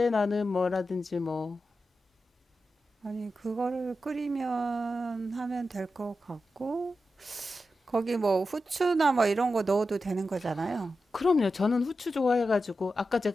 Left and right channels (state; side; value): normal; both; correlation 0.90